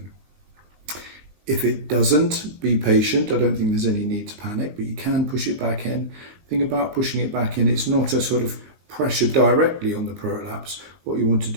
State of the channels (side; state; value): left; late; 19 ms